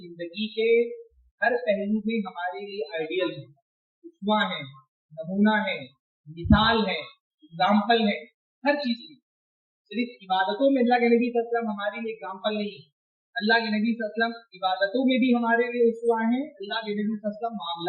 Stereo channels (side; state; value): both; identical; correlation 1.00